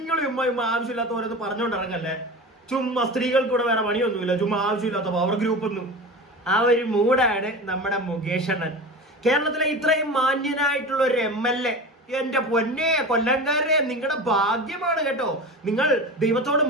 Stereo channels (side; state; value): both; normal; correlation 0.30